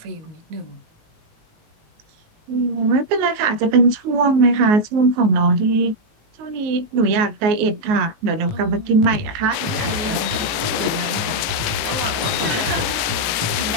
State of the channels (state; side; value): late; left; 18 ms